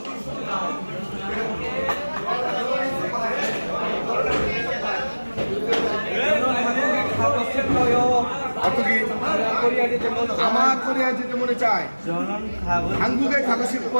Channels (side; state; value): both; inverted; correlation -1.00